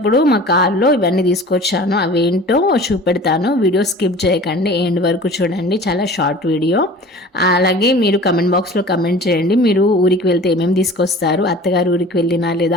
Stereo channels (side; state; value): both; normal; correlation 0.42